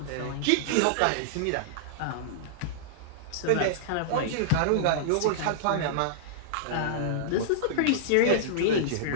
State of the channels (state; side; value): different; both; correlation -0.02